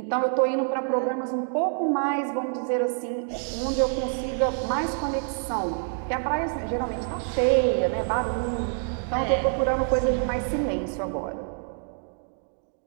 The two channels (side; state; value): left; silent; 60 dB below the other